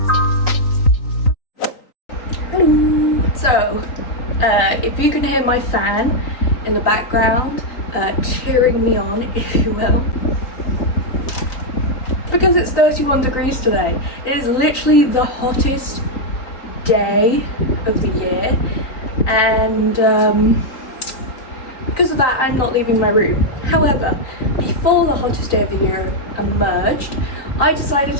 Hello. So, if you can hear my fan in the background cheering me on, if you will, because it's 31 degrees today. It is literally the hottest day of the year, and because of that I'm not leaving my room. However, before the hottest day of the year emerged, I decided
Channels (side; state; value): right; late; 3.8 ms